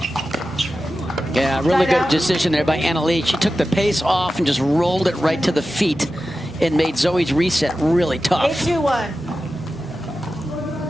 Yeah, really good decision there by Anna-Lee. She took the pace off and just rolled it right to the feet and made Zoe's reset really tough. 8-2-1.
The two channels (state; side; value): normal; both; correlation 0.93